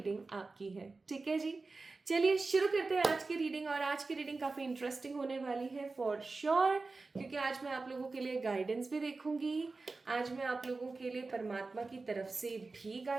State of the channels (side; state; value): left; quieter; 3.8 dB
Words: आपकी है। ठीक है जी, चलिए शुरू करते हैं आज की रीडिंग। और आज की रीडिंग काफ़ी इंटरेस्टिंग होने वाली है फॉर श्योर, क्योंकि आज मैं आप लोगों के लिए गाइडेंस भी देखूंगी, आज मैं आप लोगों के लिए परमात्मा की तरफ से भी